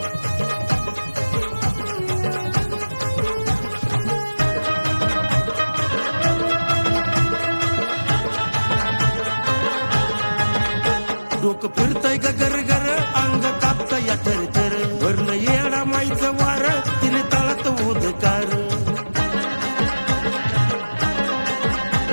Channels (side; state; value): both; inverted; correlation -1.00